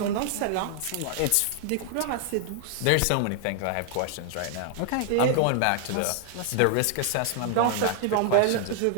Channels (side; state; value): both; different; correlation 0.00